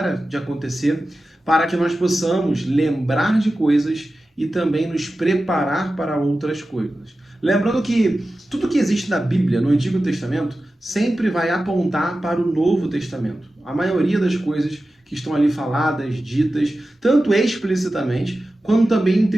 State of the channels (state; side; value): normal; both; correlation 0.94